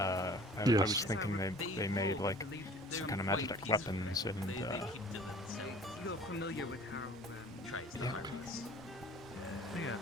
Yes. was thinking they made like some kind of Magitech weapons and. You're familiar with how Yeah.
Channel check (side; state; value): both; normal; correlation 0.48